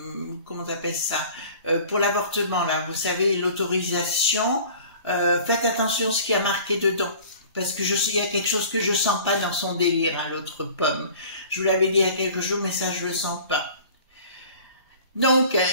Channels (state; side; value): inverted; both; correlation -0.45